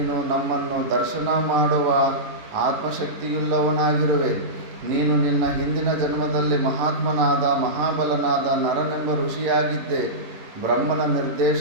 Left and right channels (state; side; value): late; left; 11 ms